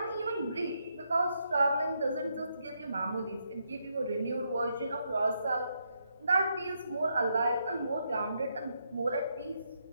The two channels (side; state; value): both; inverted; correlation -0.79